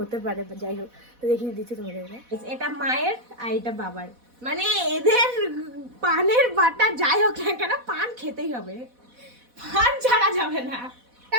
হতে পারে। যাই হোক, তো দেখিয়ে দিচ্ছি তোমাদেরকে। এটা মায়ের আর এটা বাবার, মানে এদের পানের বাটা যাই হোক না কেন পান খেতেই হবে, পান ছাড়া যাবে না।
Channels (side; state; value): left; late; 4.1 ms